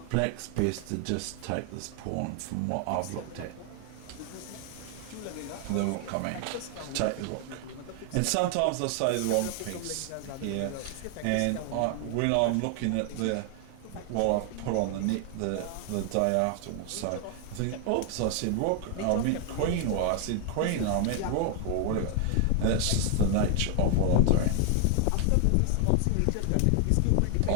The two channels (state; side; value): different; both; correlation 0.00